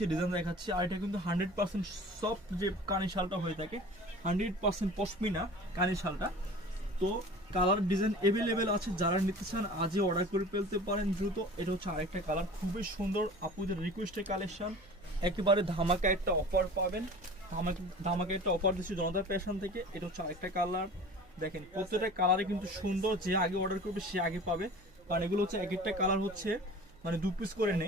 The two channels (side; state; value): right; noise; hum, 26 dB below the sound